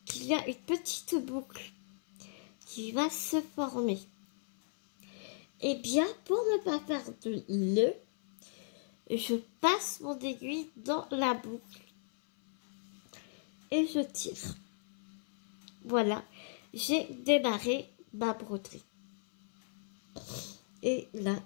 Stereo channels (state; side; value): silent; right; 54 dB below the other